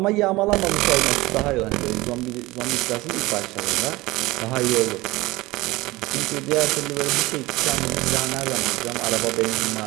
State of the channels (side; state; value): left; quieter; 20.3 dB